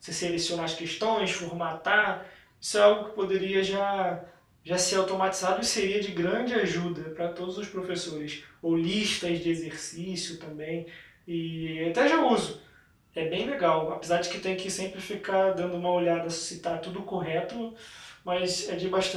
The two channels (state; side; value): identical; both; correlation 1.00